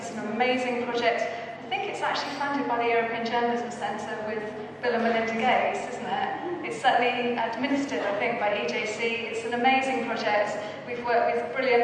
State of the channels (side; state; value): both; identical; correlation 1.00